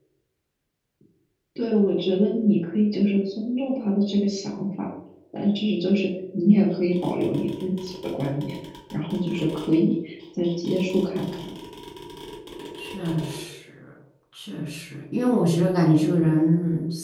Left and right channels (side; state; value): both; identical; correlation 1.00